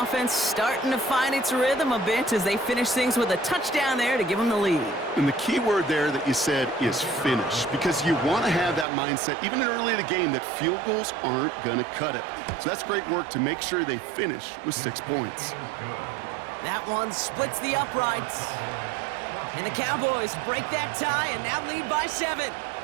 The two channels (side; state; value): left; drops out; at 8.8 s